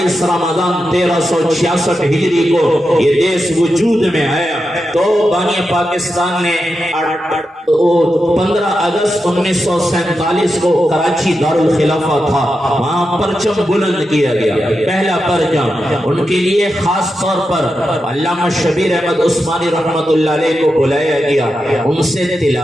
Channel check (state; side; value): normal; both; correlation 0.88